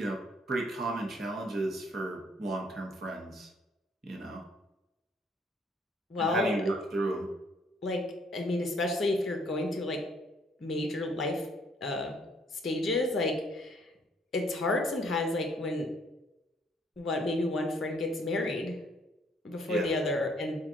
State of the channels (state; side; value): normal; both; correlation 0.65